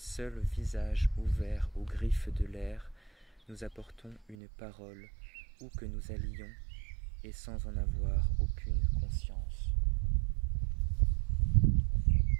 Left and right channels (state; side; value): drops out; left; at 4.4 s